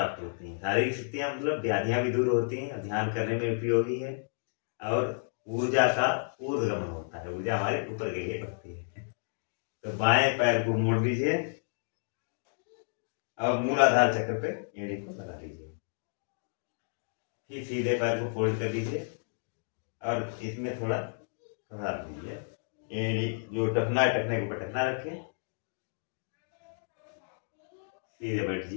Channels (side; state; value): right; silent; digital silence